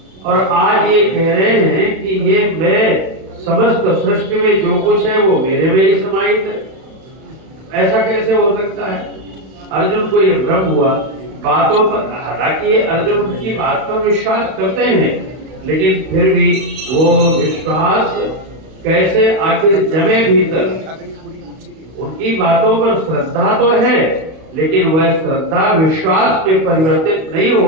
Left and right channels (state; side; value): late; left; 32 ms